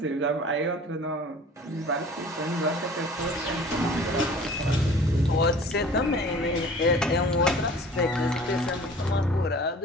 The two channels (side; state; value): both; normal; correlation 0.46